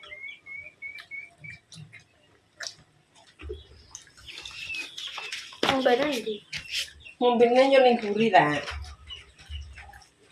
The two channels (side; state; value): both; identical; correlation 1.00